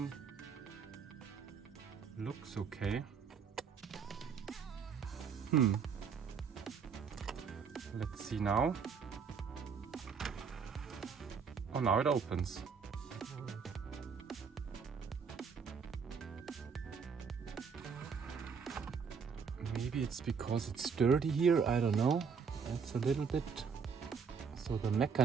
Looks okay. Let's see now. Oh, now it opens. Maybe it's because it's dirty here, I don't know. It's a little bit. So the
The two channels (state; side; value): quieter; left; 6.0 dB